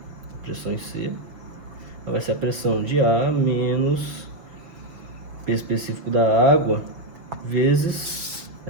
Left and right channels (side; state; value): left; late; 6.0 ms